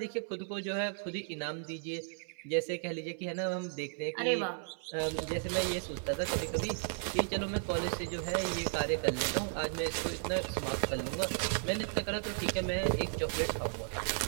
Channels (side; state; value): left; silent; 55 dB below the other